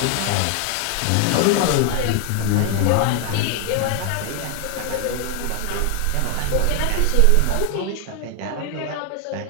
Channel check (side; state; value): both; different; correlation 0.00